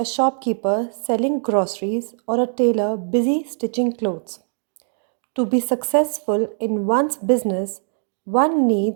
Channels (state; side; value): silent; left; 57 dB below the other